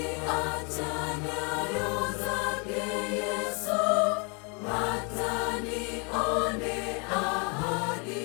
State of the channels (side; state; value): right; quieter; 34.1 dB